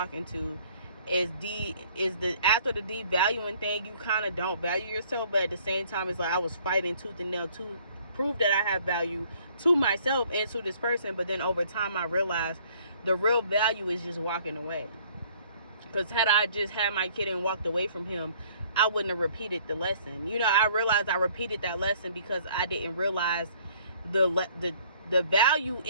into, is after the devaluing thing, you kind of don't value yourself, but at the same time, it's like I was fighting tooth and nail to prove that I have value to myself and to this person. But then over time, I realized the real value is just walking away. Because had I just had my kid and walked away from him, I wouldn't have repeated the lesson. You know, I realized I repeated that lesson because I didn't realize the value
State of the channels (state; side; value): inverted; both; correlation -0.59